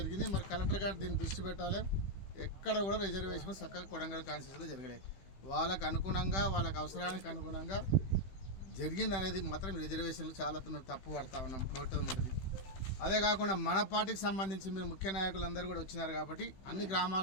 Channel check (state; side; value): late; right; 16 ms